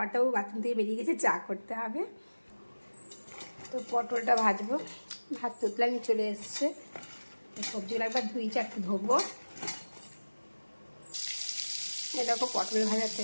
বাথরুম থেকে বেরিয়ে গেছে, চা করতে হবে। তো পটলটা ভাজবো, ভাত তুতলানি চলে এসছে। সবজিগুলো একবার 2-4টে ধোবো। এরকম পটল ভাজা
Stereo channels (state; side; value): inverted; both; correlation -1.00